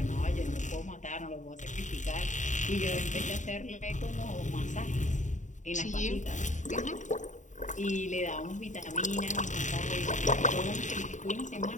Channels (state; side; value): late; right; 0.36 ms